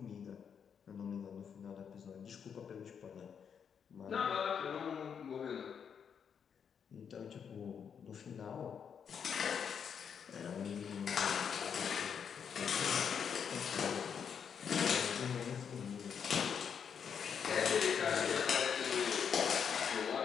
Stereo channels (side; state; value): right; quieter; 7.3 dB